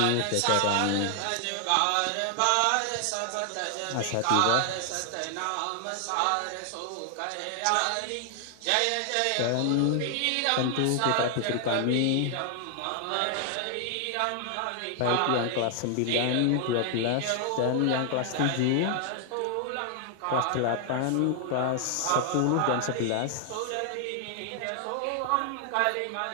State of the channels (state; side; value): different; both; correlation 0.00